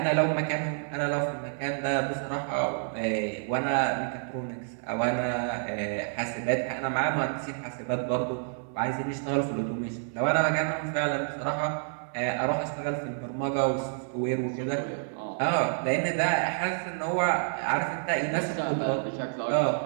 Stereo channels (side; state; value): left; silent; 59 dB below the other